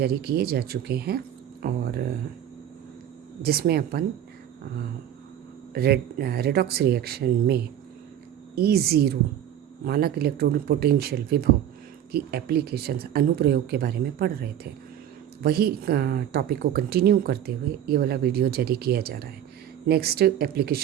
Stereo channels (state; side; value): quieter; left; 10.6 dB